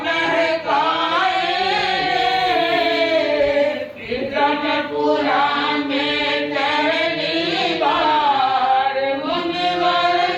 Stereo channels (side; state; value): both; identical; correlation 1.00